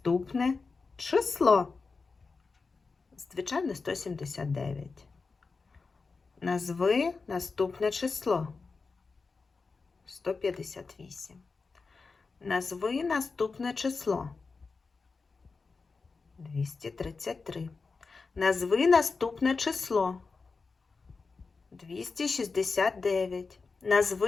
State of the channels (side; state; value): right; quieter; 4.4 dB